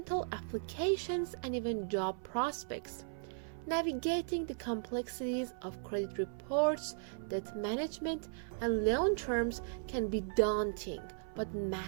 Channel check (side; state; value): left; silent; 53 dB below the other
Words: applications and even job prospects. Navigating the complexities of credit reports, debt management, and loan terms can be daunting, but